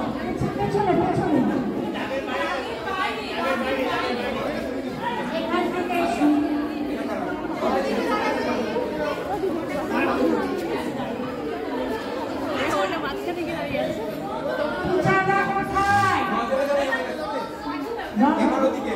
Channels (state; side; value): identical; both; correlation 1.00